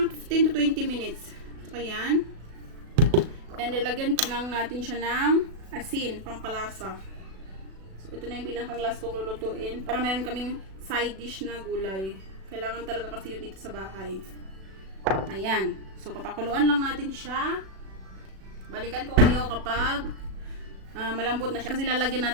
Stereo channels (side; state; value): left; late; 36 ms